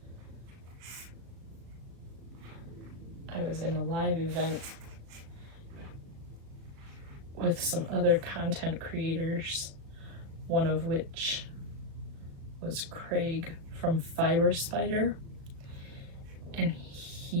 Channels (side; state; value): left; late; 36 ms